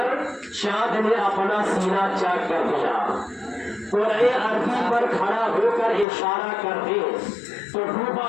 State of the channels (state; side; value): drops out; right; at 6.1 s